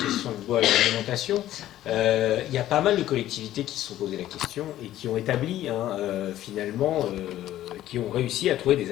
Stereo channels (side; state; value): right; quieter; 13.4 dB